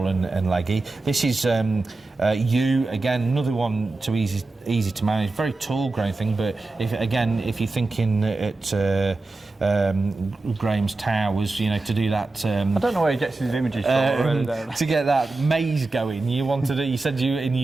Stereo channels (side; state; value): left; quieter; 3.4 dB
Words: and leggy. This is again, another one too easy to manage, very tall growing thing. But if you're thinking at Graham's Towers, to do that. I don't know where he gets his images from. To get that maze going, you said in